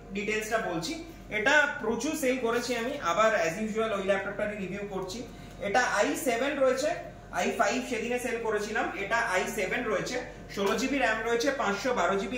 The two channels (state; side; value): identical; both; correlation 1.00